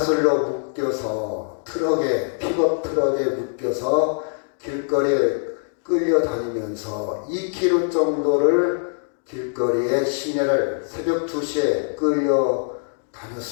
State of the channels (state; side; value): silent; right; digital silence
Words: 묶여서 픽업 트럭에 묶여서 길거리에 끌려다니면서 2km 정도를 길거리에 시내를 새벽 2시에